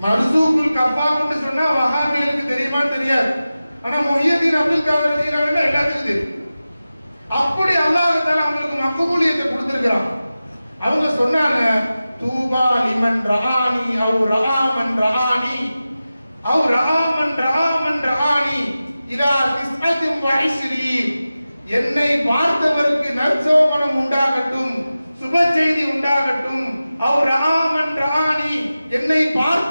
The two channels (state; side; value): inverted; both; correlation -0.95